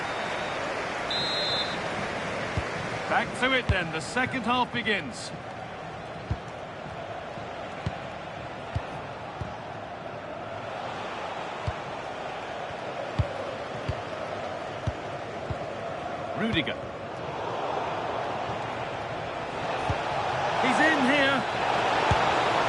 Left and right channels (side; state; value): both; identical; correlation 1.00